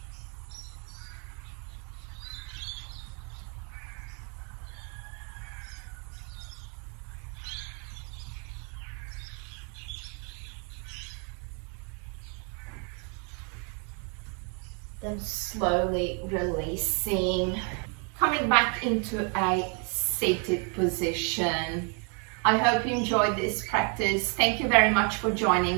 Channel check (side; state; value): left; quieter; 38.0 dB